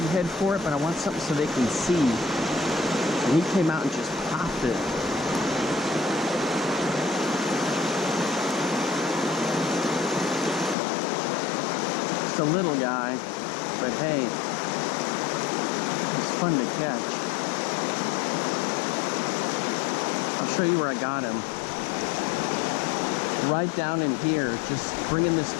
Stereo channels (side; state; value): right; drops out; at 10.8 s